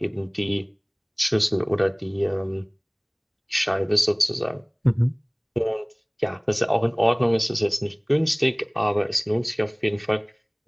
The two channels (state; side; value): identical; both; correlation 1.00